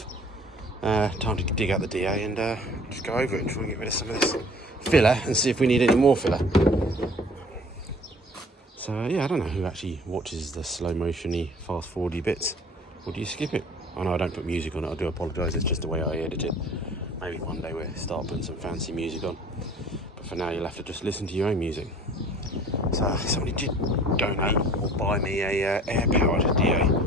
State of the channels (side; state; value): both; normal; correlation 0.49